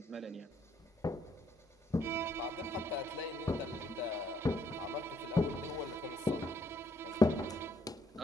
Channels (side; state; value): both; normal; correlation 0.70